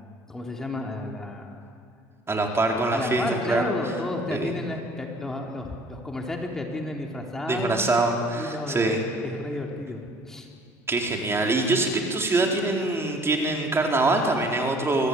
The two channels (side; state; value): both; normal; correlation 0.53